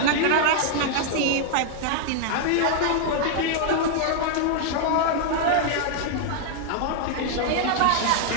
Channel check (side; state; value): both; different; correlation 0.00